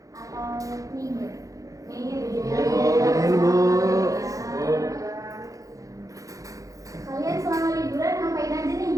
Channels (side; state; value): left; late; 0.16 ms